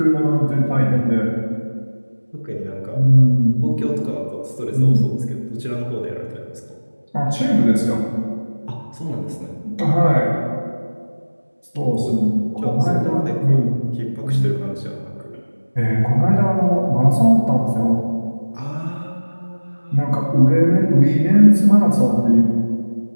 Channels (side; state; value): both; inverted; correlation -1.00